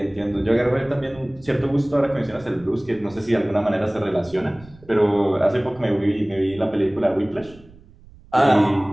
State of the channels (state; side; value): noise; right; rumble, 24 dB below the sound